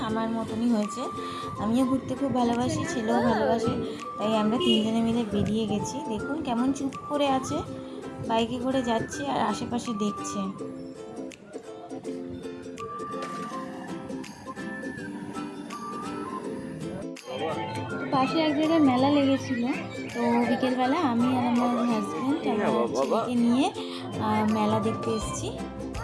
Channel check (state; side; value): identical; both; correlation 1.00